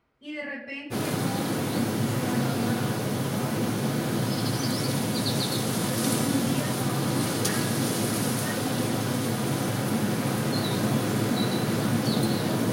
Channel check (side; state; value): both; identical; correlation 1.00